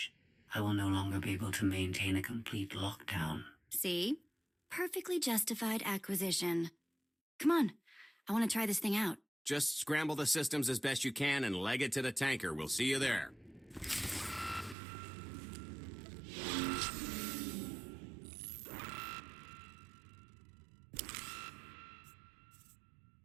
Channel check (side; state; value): left; drops out; at 14.8 s